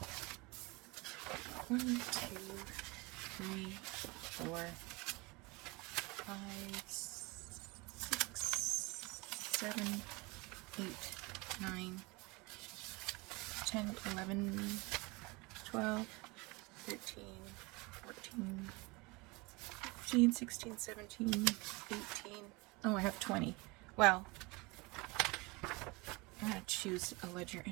1, 2, 3, 4, 5, 6, 7, 8, 9, 10, 11, 12, 13, 14, 15, 16, 17, 18. Oh, I have 20. Well, I'm going to choose a ledger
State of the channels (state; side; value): quieter; left; 25.6 dB